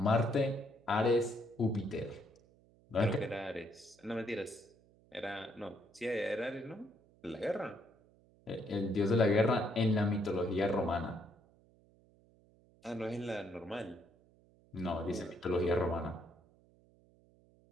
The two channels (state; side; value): noise; right; hum, 29 dB below the sound